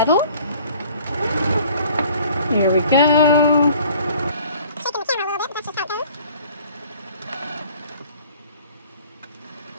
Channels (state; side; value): inverted; both; correlation -0.54